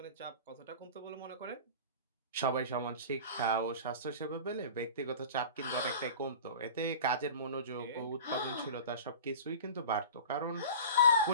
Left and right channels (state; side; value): inverted; both; correlation -0.36